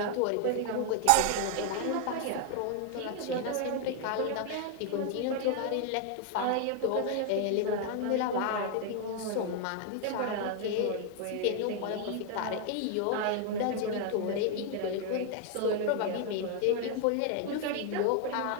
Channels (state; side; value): different; both; correlation 0.00